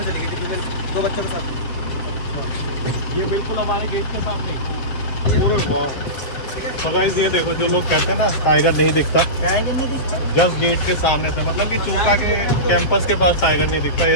चली गई थी दो बच्चों के साथ। ये बिल्कुल हमारे गेट के सामने पूरे वाह। तो गाइस ये देखो, जो लोग कहते हैं ना टाइगर नहीं दिखता, टाइगर नहीं दिखता, जस्ट गेट के सामने से, मतलब कि चूका के कैंपस के पास टाइगर नहीं दिखता।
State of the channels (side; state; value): right; late; 7.4 ms